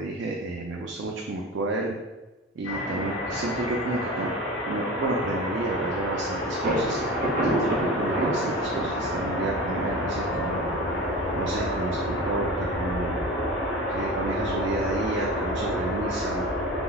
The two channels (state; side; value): normal; both; correlation 0.32